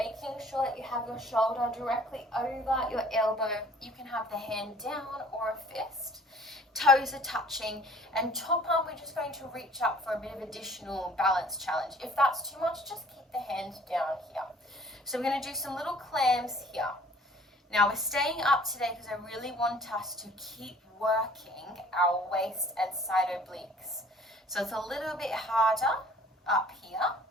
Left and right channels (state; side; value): normal; both; correlation 0.53